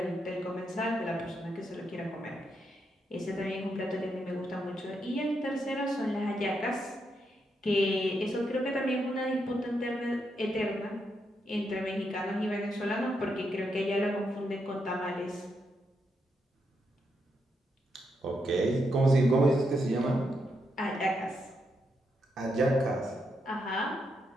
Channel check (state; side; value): normal; both; correlation 0.81